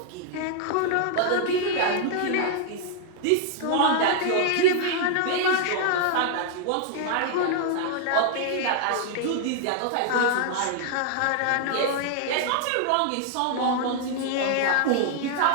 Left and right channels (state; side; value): different; both; correlation -0.01